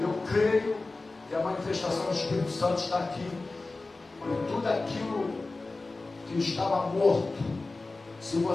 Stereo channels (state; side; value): quieter; right; 3.4 dB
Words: creio que a manifestação do Espírito Santo está aqui. E tudo aquilo que estava morto, se